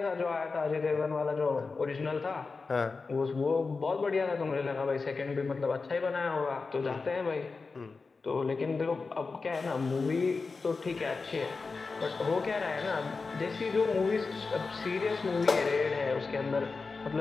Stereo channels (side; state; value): right; quieter; 4.3 dB